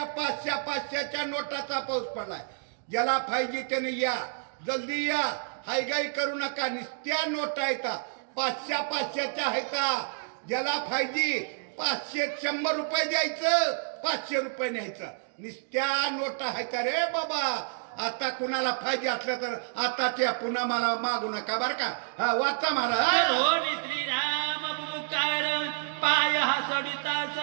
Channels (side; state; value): left; silent; digital silence